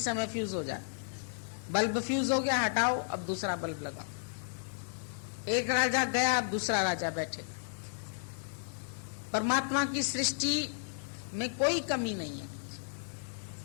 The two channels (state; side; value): silent; right; digital silence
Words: फ्यूज हो जाए। बल्ब फ्यूज हो गया, हटाओ, अब दूसरा बल्ब लगाओ। एक राजा गया, अब दूसरा राजा बैठेगा। परमात्मा की सृष्टि में कोई कमी नहीं है,